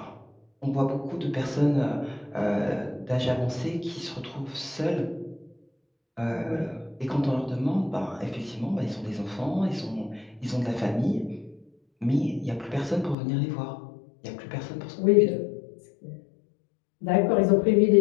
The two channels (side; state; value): right; drops out; at 13.2 s